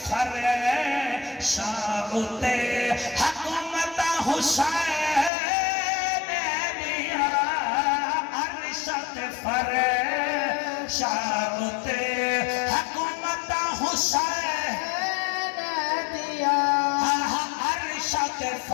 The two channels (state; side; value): drops out; right; at 5.3 s